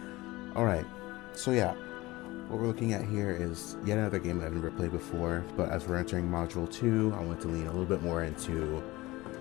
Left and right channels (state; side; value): quieter; right; 20.0 dB